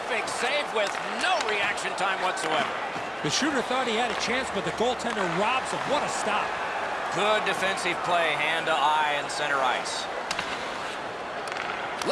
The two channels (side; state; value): both; identical; correlation 1.00